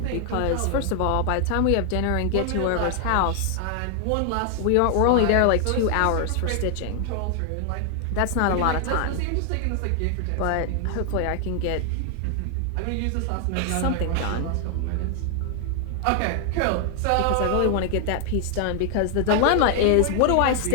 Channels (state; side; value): different; both; correlation 0.00